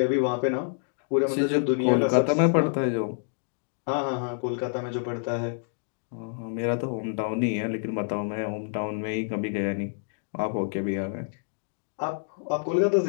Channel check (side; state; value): right; silent; digital silence